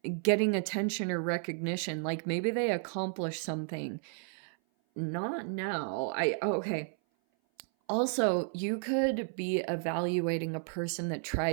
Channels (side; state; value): left; silent; 56 dB below the other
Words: getting attention or recognition. Like maybe they accomplished something. Not now. Okay. Also, you could be evaluating a person that